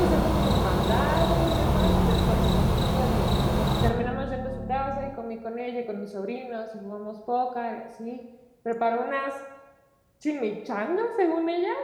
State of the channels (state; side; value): identical; both; correlation 1.00